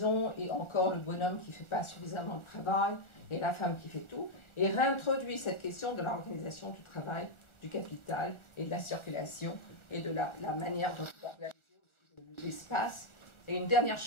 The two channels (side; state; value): right; late; 1.4 ms